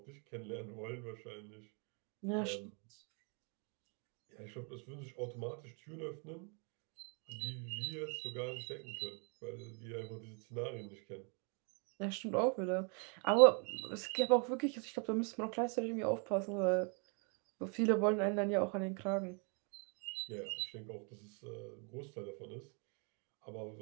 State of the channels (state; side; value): quieter; left; 37.1 dB